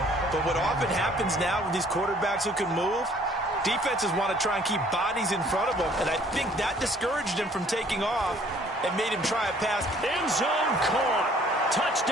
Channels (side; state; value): both; normal; correlation 0.58